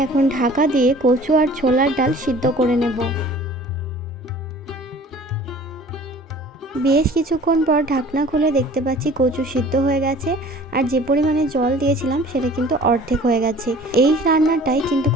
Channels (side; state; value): both; normal; correlation 0.47